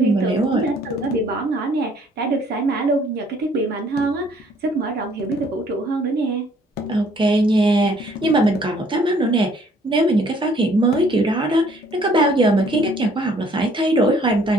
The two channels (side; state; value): both; normal; correlation 0.60